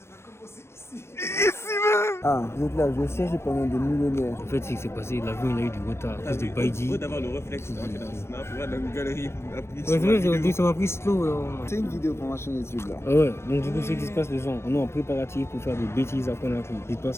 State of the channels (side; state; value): right; late; 0.13 ms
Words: va commencer ici. Ici même. Ah, vous êtes là, je vais chercher pendant des millénaires. En fait, ce qui s'est passé, l'avion il a eu du retard à cause de Baidi. Faut d'avoir le réflexe d'entrer dans le snap, voir dans une galerie. Ouais, c'est vrai, j'ai dit ça m'a pris slow. C'est une vidéo pour ma chaîne YouTube là. Ah ouais, donc du coup, ce qui se passe, les gens, on est en préparatif pour faire des bêtises après la crise. Dites pas